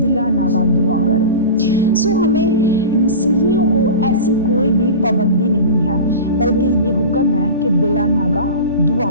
नागा दुआ करो। हमें मसीहियों को ऐसी कोई भी पाबंदी नहीं है, बल्कि ये हुक्म है कि बिला नागा दुआ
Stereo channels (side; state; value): both; inverted; correlation -0.31